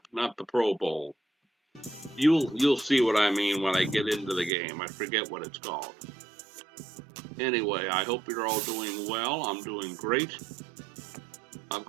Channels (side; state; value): left; drops out; at 4.5 s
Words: the Pro Bowl. You'll see what I mean when I get into the game. I forget what it's called. Anyway, I hope you're all doing well. I'm doing great. I've